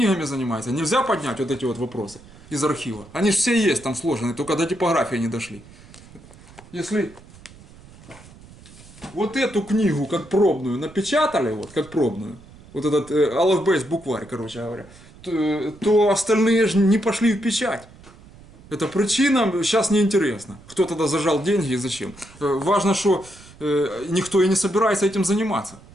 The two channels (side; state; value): right; noise; rumble, 22 dB below the sound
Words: занимается. Нельзя поднять вот эти вот вопросы из архива. Они же все есть там сложены, только до типографии не дошли. Если вот эту книгу как пробную напечатали, вот как пробную, вот этот Алфбейс букварь, короче говоря, то остальные же не пошли в печать. Эта причина сейчас неинтересна. Кто тогда зажал деньги и зачем. Важно, что никто и не собирается этим заниматься.